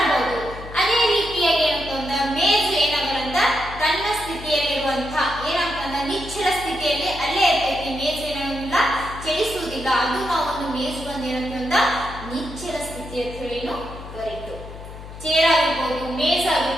ಅದೇ ರೀತಿಯಾಗಿ ಏನಾಗ್ತಂದ್ರ ಮೇಜು ಏನಾಗಲ್ಲ ತನ್ನ ಸ್ಥಿತಿಯಲ್ಲಿರುವಂತಹ ಏನಾಗ್ತಂದ್ರ ನಿಶ್ಚಲ ಸ್ಥಿತಿಯಲ್ಲಿ ಅಲ್ಲೇ ಇರ್ತೈತಿ. ಮೇಜು ಏನಾಗಲ್ಲ ಚಲಿಸುವುದಿಲ್ಲ. ಅದು ನಾವು ಒಂದು ಮೇಜು ಬಂದು ಏನಂತಂದ್ರ ನಿಶ್ಚಲ ಸ್ಥಿತಿ ಅಂತ ಹೇಳಿ ಕರೀತು. ಚೇರ್ ಆಗಿರ್ಬೋದು, ಮೇಜ್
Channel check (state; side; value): noise; left; hum, 13 dB below the sound